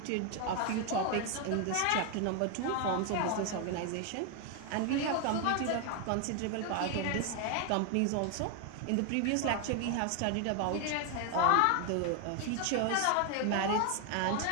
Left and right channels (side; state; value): both; different; correlation 0.01